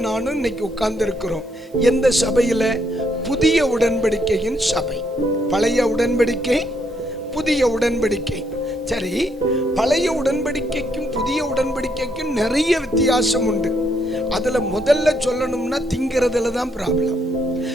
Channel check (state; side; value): normal; both; correlation 0.74